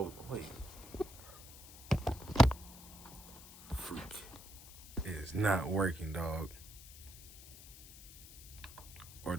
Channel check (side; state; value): left; noise; hiss, 16 dB below the sound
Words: wait. Freak. It is not working, dog. Or